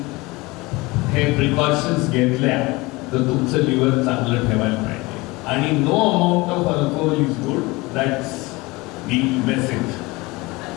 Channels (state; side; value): quieter; right; 22.9 dB